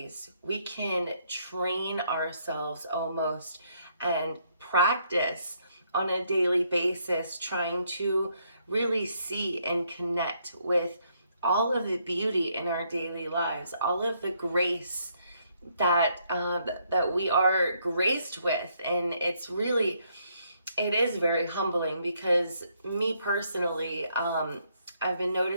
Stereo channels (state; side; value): inverted; both; correlation -0.72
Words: we can train ourselves almost and practice on a daily basis, trying to really see and connect with all of the beauty in our daily lives, all of the grace that we are graced with. And it is very humbling, because me personally, I've been